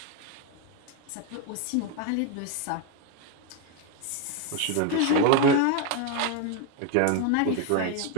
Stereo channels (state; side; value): different; both; correlation 0.02